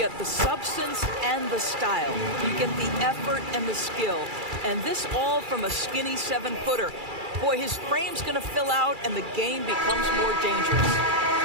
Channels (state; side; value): late; left; 2.3 ms